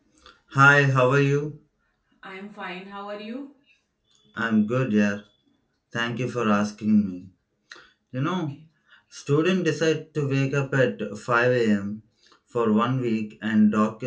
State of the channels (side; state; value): both; identical; correlation 1.00